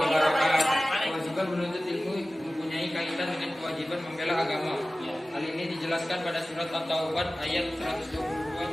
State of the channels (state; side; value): normal; both; correlation 0.97